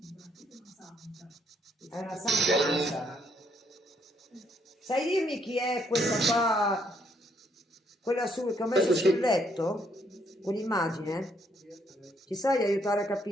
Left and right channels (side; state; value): both; normal; correlation 0.71